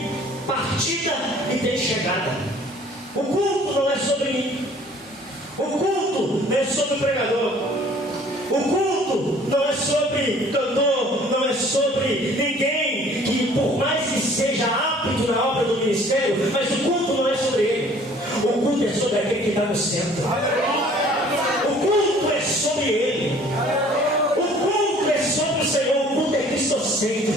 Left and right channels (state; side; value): normal; both; correlation 0.53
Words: partida e tem chegada. O culto não é sobre mim. O culto não é sobre o pregador. O culto não é sobre cantor, não é sobre ninguém que, por mais que seja apto na obra do ministério, mas o culto não é sobre ele. O culto é sobre aquele que está no centro. O culto é sobre ele. O culto é sobre o Senhor. O culto é